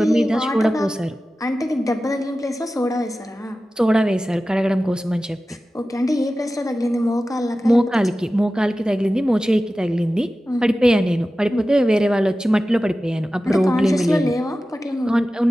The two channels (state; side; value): normal; both; correlation 0.95